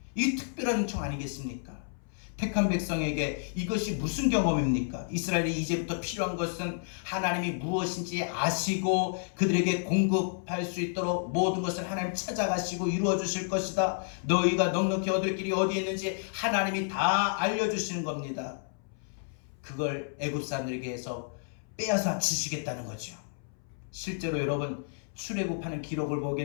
이 특별한 은총 아니겠습니까? 택한 백성에게 이것이 무슨 경험입니까? 이스라엘이 이제부터 필요한 것은 하나님이 무엇인지 아시고 그들에게 공급할 수 있도록 모든 것을 하나님 찾아가시고 이루어 주실 것이다. 너희가 넉넉히 얻을 길이 어디에 있는지 하나님이 다 알려주시는 겁니다. 그걸 애굽 사람들에게 해서 빼앗아 주시겠다는 거죠. 실제로 여러분 출애굽하는 기록을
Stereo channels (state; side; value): silent; right; 57 dB below the other